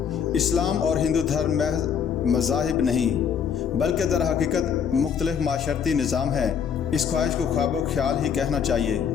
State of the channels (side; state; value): right; quieter; 7.5 dB